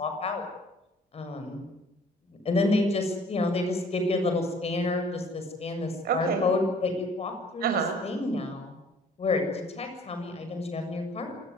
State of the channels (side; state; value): both; normal; correlation 0.54